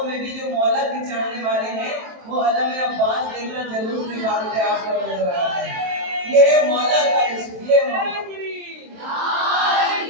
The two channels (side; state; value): left; late; 23 ms